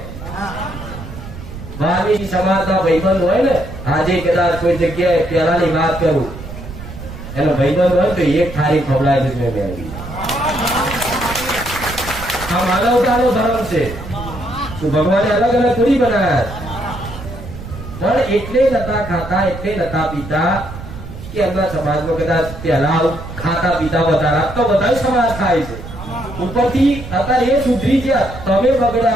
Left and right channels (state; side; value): noise; right; rumble, 11 dB below the sound